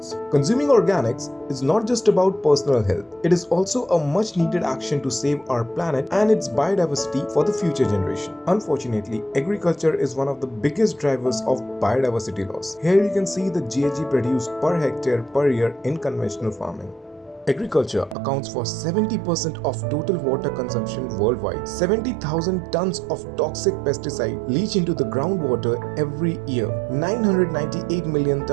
Consuming organics is not just about personal health, it is also a much needed action to save our planet and its biodiversity for the future generation. Unfortunately, agriculture is one of the biggest drivers of biodiversity loss. Here you can see the GHG produced per hectare per year in conventional farming. Agriculture accounts for 70% of total water consumption worldwide. 70,000 tons of toxic pesticide leach into the groundwater every year. 998 million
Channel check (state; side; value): drops out; left; at 18.2 s